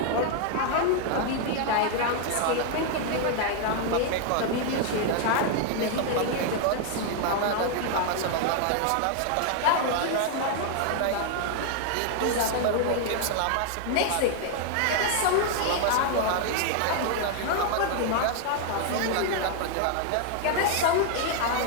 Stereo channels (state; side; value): different; both; correlation 0.00